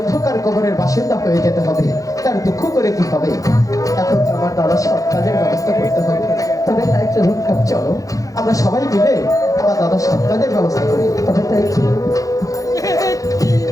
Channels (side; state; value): right; late; 0.17 ms